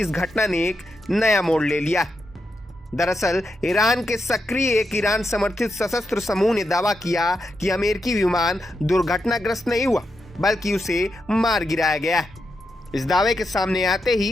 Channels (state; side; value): normal; both; correlation 0.85